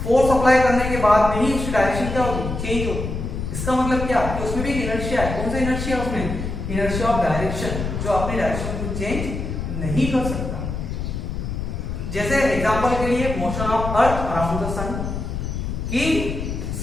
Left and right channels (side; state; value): left; noise; rumble, 4 dB below the sound